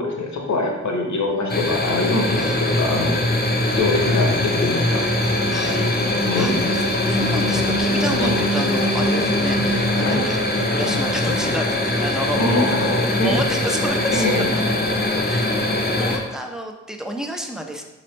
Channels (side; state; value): both; normal; correlation 0.40